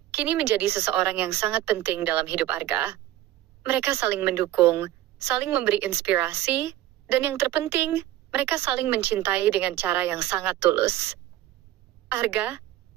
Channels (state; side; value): quieter; left; 14.3 dB